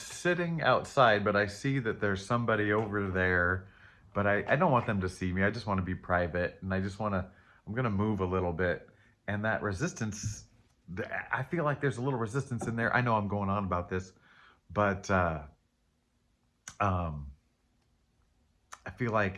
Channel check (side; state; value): both; identical; correlation 1.00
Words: outside, but I see that there's somebody over there, but I don't want them to see me. I just want to be private, and I just want to, I'm going to move a little bit. And that resistance, I feel like there's a little resistance in there. I know I'm going on about this, but um, I feel